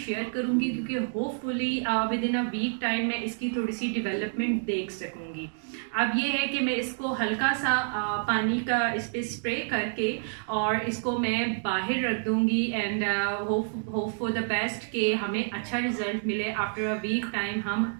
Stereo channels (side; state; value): left; silent; digital silence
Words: करूंगी, क्योंकि hopefully within a week time मैं इसकी थोड़ी सी डेवलपमेंट देख सकूंगी। अब ये है कि मैं इसको हल्का सा पानी का इस पे स्प्रे करके और इसको मैं बाहर रख दूंगी and hope for the best कि हमें अच्छा रिजल्ट मिले। आफ्टर अ वीक टाइम